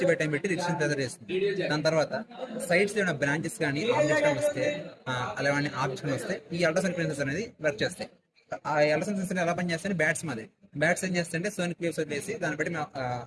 by time పెట్టి డిస్టెన్స్ మెజర్ చేస్తుంది. దాని తర్వాత సైడ్స్ ఏమైనా బ్రాంచెస్ కానీ ఆబ్జెక్ట్స్ కానీ వస్తే అలాంటి ఆబ్జెక్ట్స్ కానీ వస్తే ఈ అల్ట్రాసౌండ్ సెన్సర్స్ అనేది వర్క్ చేస్తాయి. ఆ అల్ట్రాసౌండ్ సెన్సర్ ఎలా పనిచేస్తాయి బ్యాట్స్ మాది బ్యాట్స్ ఏం చేస్తాయంటే సోనిక్ వేవ్స్ వదిలేసి దాన్ని బట్టి మేము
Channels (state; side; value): identical; both; correlation 1.00